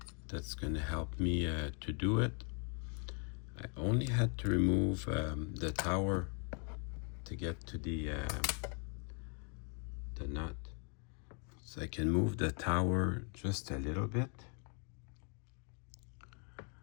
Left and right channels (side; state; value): right; quieter; 39.4 dB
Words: that's going to help me to do it. I only had to remove the tower to get to the nut. So I can move the tower just a little bit,